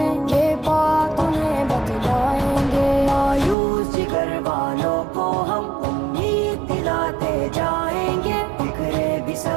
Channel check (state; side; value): drops out; left; at 3.6 s